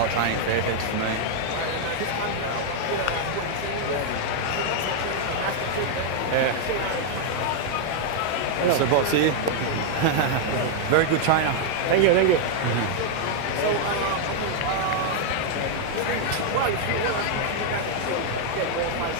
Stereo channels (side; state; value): both; different; correlation 0.00